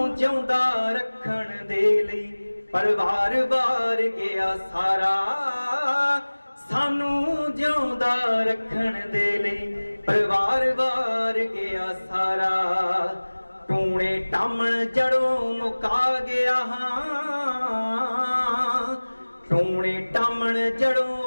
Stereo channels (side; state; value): both; inverted; correlation -1.00